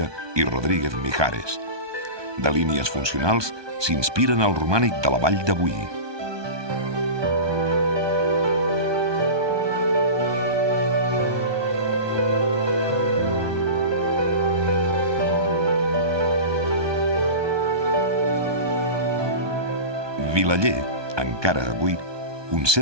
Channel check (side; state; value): left; late; 1.2 ms